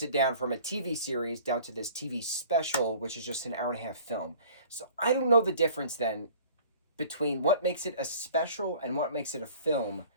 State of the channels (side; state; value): both; inverted; correlation -0.49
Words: it down from a TV series down to this TV special, which is just an hour and a half film. So I don't know the difference then between what makes it a special and what makes it a film.